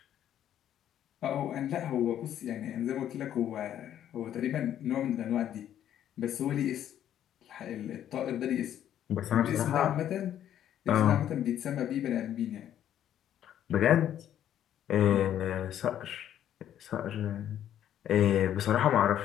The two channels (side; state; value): right; quieter; 10.8 dB